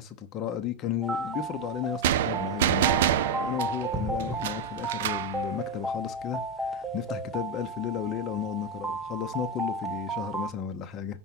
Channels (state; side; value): normal; both; correlation 0.11